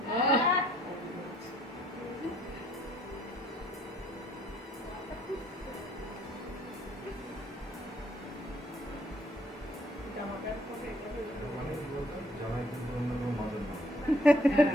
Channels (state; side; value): normal; both; correlation 0.66